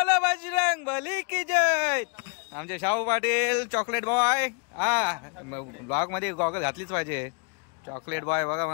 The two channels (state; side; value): quieter; right; 38.3 dB